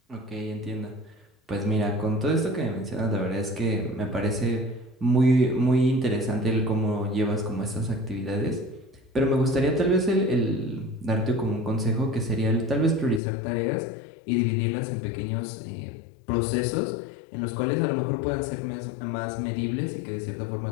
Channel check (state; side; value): drops out; right; at 13.2 s